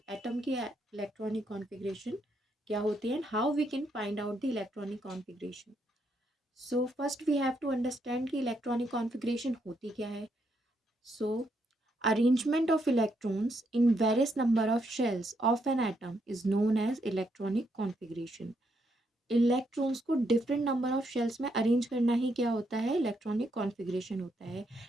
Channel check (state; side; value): normal; both; correlation 0.77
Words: electronic configuration क्या होती है and how we can find out the electronic configuration. So first we have to understand कि electronic configuration होती क्या है. So arrangement of electrons in various number of shells of an atom is known as electronic configuration. Electrons को डिफरेंट नंबर ऑफ शेल्स में अरेंज करना ही क्या होता है, इलेक्ट्रॉनिक कॉन्फ़िगरेशन होता है.